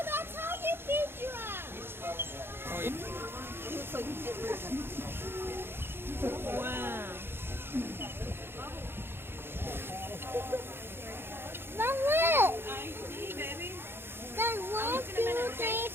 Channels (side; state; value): left; late; 0.11 ms